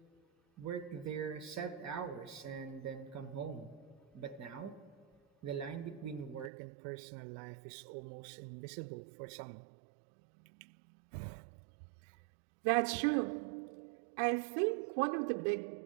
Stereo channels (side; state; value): left; drops out; at 6.5 s